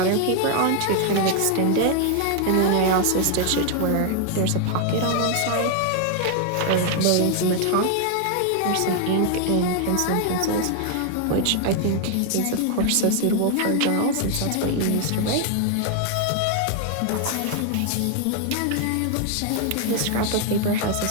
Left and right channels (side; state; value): both; different; correlation 0.00